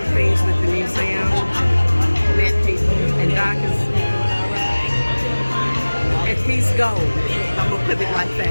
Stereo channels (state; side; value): inverted; both; correlation -1.00